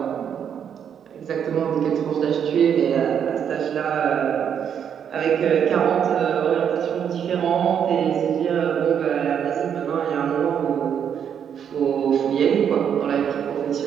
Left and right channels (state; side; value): quieter; left; 8.3 dB